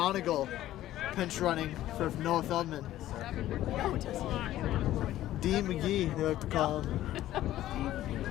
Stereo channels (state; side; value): quieter; right; 13.9 dB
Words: pinch running for Noah Feldman. D. McGee, they like to call him.